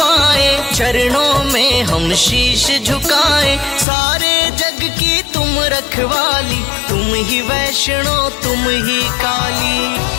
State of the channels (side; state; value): right; drops out; at 3.9 s